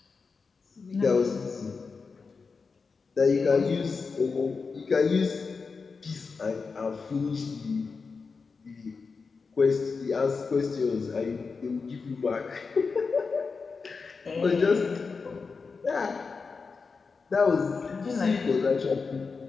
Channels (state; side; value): quieter; right; 4.8 dB